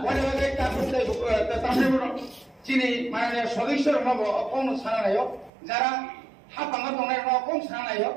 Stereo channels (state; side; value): drops out; left; at 5.5 s